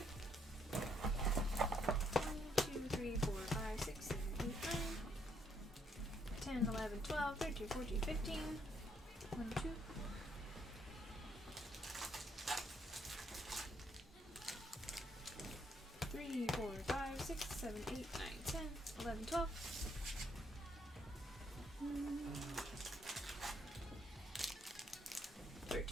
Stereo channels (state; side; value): normal; both; correlation 0.72